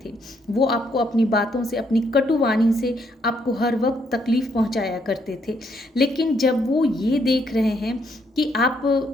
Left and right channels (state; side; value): normal; both; correlation 0.72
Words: थे। वो आपको अपनी बातों से, अपनी कटु वाणी से आपको हर वक़्त तकलीफ़ पहुँचाया करते थे। लेकिन जब वो ये देख रहे हैं कि आप